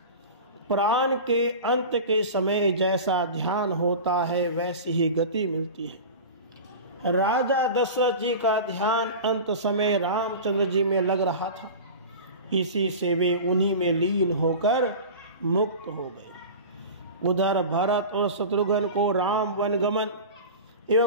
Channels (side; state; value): both; inverted; correlation -0.32